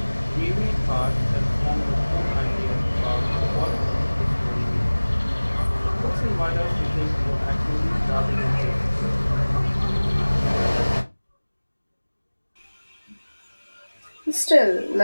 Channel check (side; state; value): both; inverted; correlation -1.00